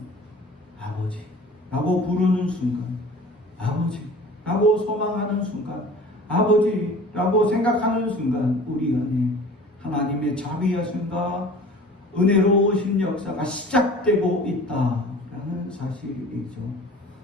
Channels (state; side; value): normal; both; correlation 0.43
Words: 아버지라고 부르는 순간, 아버지라고 소망하는 순간, 아버지라고 생각하는 순간 우리 안에 하나님의 자비하심과 은혜로우신 역사가 시작되고 있다라는 사실이죠.